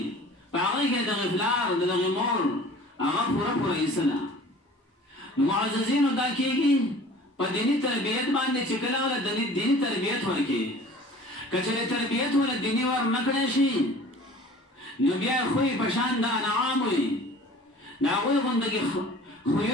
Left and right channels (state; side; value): normal; both; correlation 0.45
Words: پاگی که دا غفلار دا غمور اگا پورا پورا اسلا معززین دا کی گی پا دینی تربیت باندے چکلا والا دینی تربیت ورکی کچھلے تربیت والا دینی ور نکڑے شی نو بیا خوی پشان دا انعام ہوئی ناغوی غندگی